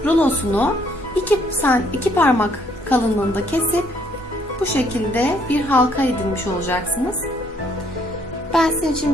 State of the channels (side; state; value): both; normal; correlation 0.66